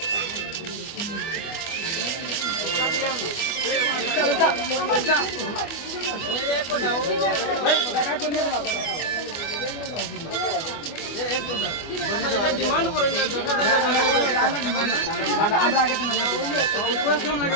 ডিমান্ড করেন না আমরা আগে কোয়েশ্চন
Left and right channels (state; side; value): late; right; 24 ms